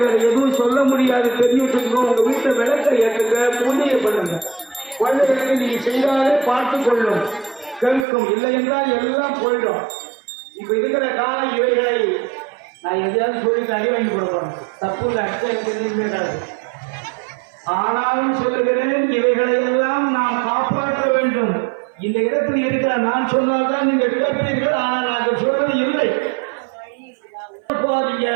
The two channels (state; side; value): drops out; left; at 8.1 s